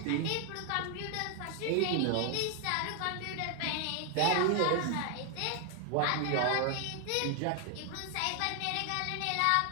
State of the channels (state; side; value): different; both; correlation 0.00